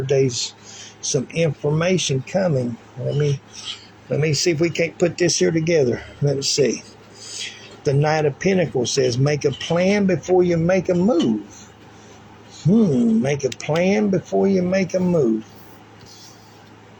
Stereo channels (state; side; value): identical; both; correlation 1.00